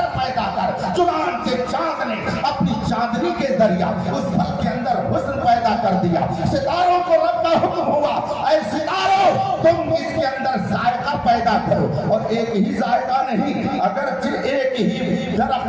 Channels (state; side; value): identical; both; correlation 1.00